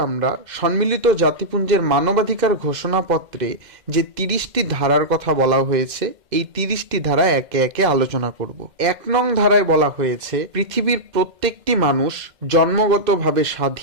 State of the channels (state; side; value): late; left; 2.0 ms